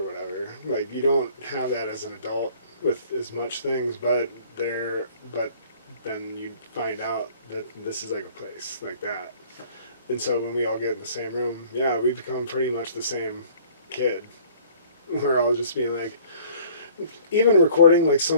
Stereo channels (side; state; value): both; inverted; correlation -0.53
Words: whatever. Like you don't have that as an adult with as much things, but then you find out that this is like a place like that. And so when we all get in the same room, yeah, we become pretty much the same kid. We're all just being like, even recording like